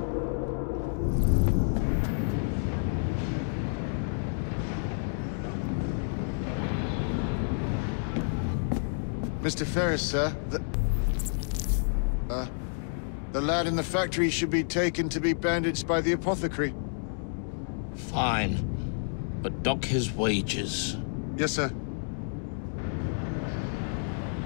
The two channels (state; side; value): silent; right; digital silence